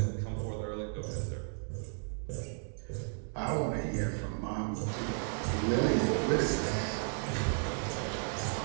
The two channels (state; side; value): silent; left; 55 dB below the other